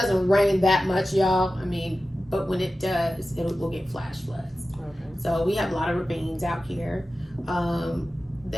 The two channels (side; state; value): both; normal; correlation 0.94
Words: rain that much, y'all. I mean, but when it does, we'll get flash floods. Okay. So we have a lot of ravines out here.